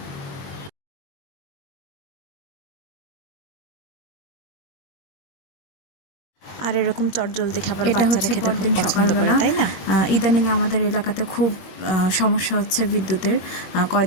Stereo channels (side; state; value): right; late; 21 ms